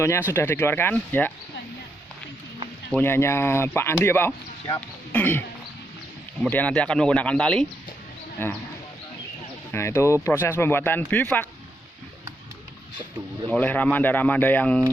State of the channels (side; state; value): both; normal; correlation 0.80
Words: sudah dikeluarkan ya. Punyanya Pak Andi ya Pak. siap. Kemudian nanti akan menggunakan tali. Nah, itu proses pembuatan bivak oleh ramanda-ramanda